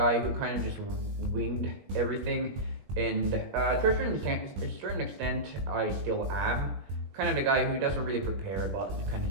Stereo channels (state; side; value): late; left; 21 ms